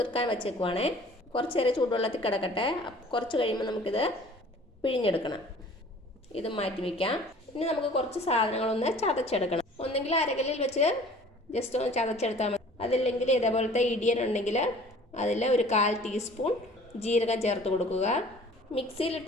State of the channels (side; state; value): both; normal; correlation 0.49